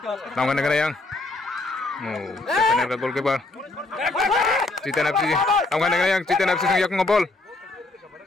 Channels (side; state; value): right; quieter; 3.1 dB